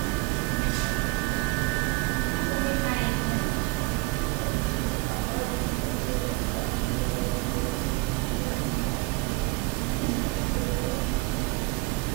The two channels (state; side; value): quieter; left; 23.6 dB